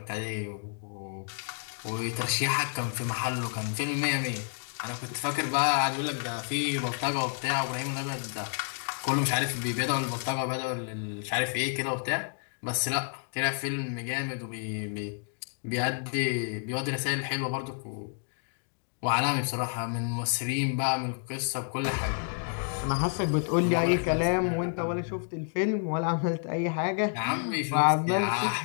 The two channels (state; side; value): silent; right; 55 dB below the other